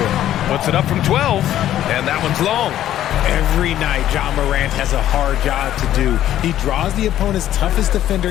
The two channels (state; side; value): quieter; right; 12.2 dB